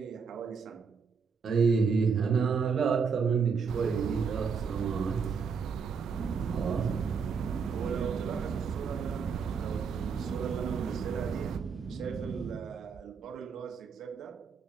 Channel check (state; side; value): quieter; left; 5.8 dB